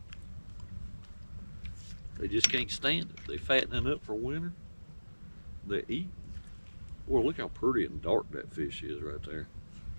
They just can't stand it. They fattening up for winter. They eat. Boy, look how pretty and dark that fish is right there.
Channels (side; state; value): both; inverted; correlation -1.00